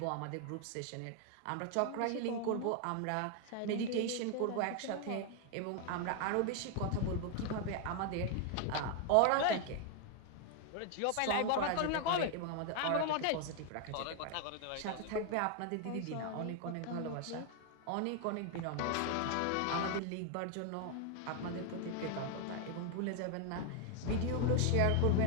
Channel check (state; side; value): different; both; correlation 0.00